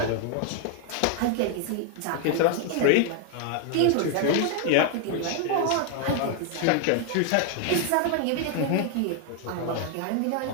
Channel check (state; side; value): different; both; correlation 0.01